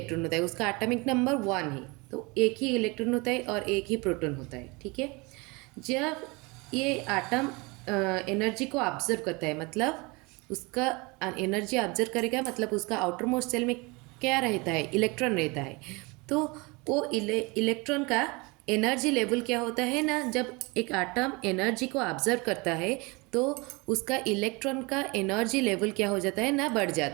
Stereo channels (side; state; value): left; quieter; 26.6 dB